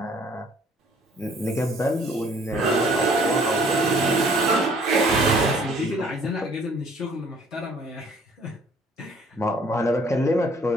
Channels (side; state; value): both; normal; correlation 0.58